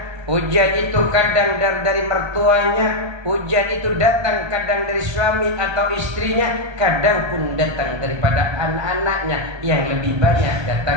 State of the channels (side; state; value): left; late; 1.3 ms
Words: ujian itu kadang dari mertuanya, ujian itu datang kadang dari suami atau istrinya, kadang pun datang daripada anak-anaknya, yang lebih banyak